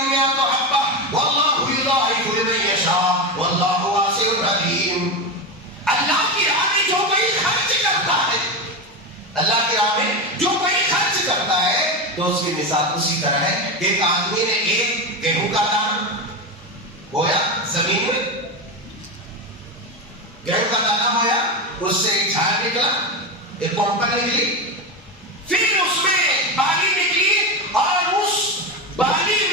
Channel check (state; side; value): normal; both; correlation 0.17